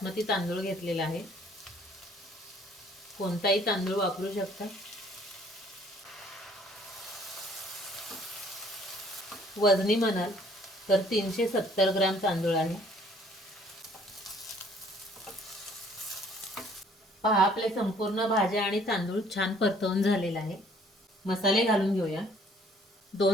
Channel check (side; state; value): both; normal; correlation 0.59